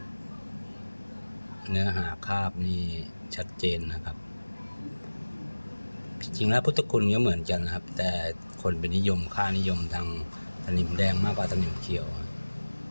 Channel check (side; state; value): both; inverted; correlation -1.00